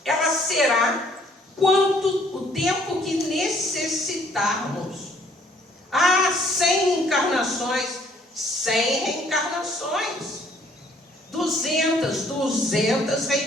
ela será o tempo que necessitarmos. 100 encarnações, 100 reencarnações. 200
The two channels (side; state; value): both; normal; correlation 0.62